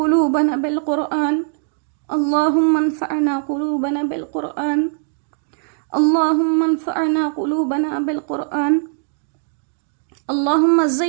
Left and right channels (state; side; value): silent; left; digital silence